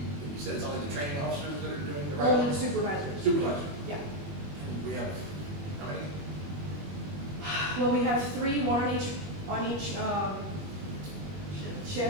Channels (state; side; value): late; left; 21 ms